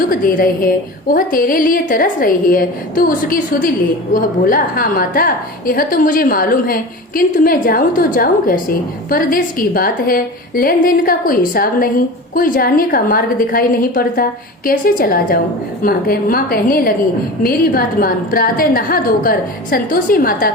दे रहे हैं, वह तेरे लिए तरस रही है, तू उसकी सुध ले। वह बोला, हाँ माता, यह तो मुझे मालूम है, किंतु मैं जाऊँ तो जाऊँ कैसे? परदेश की बात है, लेन देन का कोई हिसाब नहीं, कोई जाने का मार्ग दिखाई नहीं पड़ता, कैसे चला जाऊं? माँ कहने लगी, मेरी बात मान, प्रातः नहा धोकर संतोषी माता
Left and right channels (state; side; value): normal; both; correlation 0.32